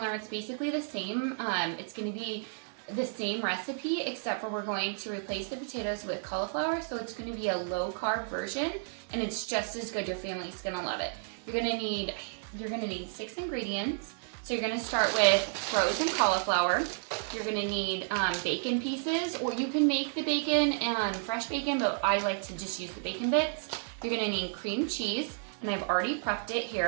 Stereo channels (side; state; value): left; silent; digital silence